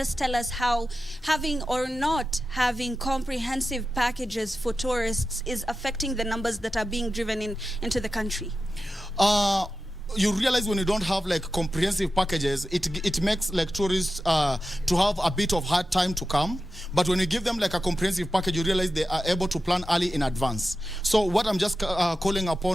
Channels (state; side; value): normal; both; correlation 0.92